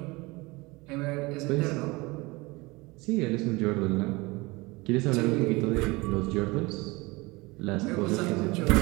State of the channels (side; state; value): left; quieter; 23.6 dB